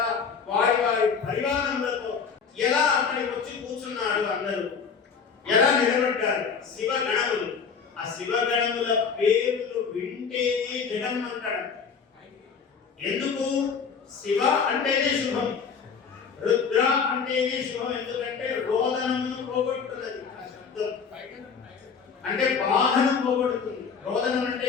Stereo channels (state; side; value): quieter; right; 6.0 dB